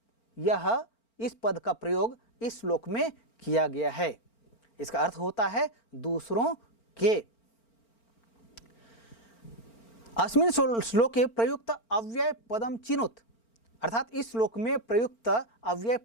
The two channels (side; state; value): right; late; 4.4 ms